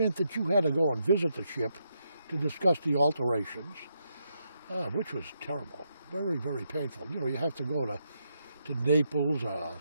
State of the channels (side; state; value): both; inverted; correlation -0.80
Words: that you had to go and visit the ship to discuss the alterations, which was terrible. Very, very painful. You know, you have to go to Naples or